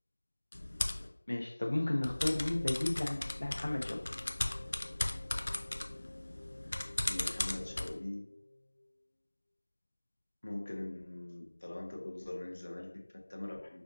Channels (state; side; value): inverted; both; correlation -1.00